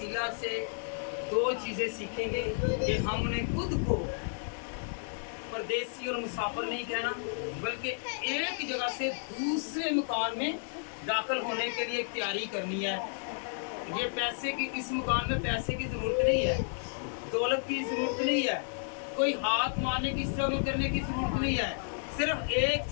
से 2 चीज़ें सीखेंगे कि हमने खुद को परदेसी और मुसाफिर नहीं कहना, बल्कि एक जगह से दूसरे मकान में दाखिल होने के लिए तैयारी करनी है। ये पैसे की, इस मकान में पैसे की ज़रूरत नहीं है, दौलत की ज़रूरत नहीं है, कोई हाथ मारने की, स्ट्रगल करने की ज़रूरत नहीं है। सिर्फ एक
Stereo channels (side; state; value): right; silent; digital silence